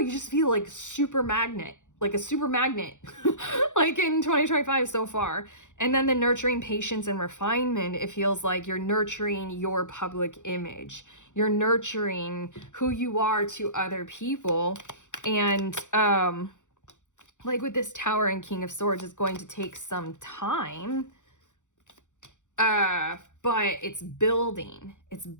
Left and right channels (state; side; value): late; right; 0.85 ms